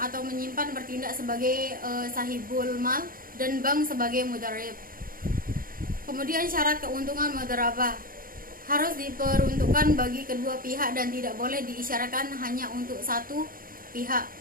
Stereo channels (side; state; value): left; late; 0.41 ms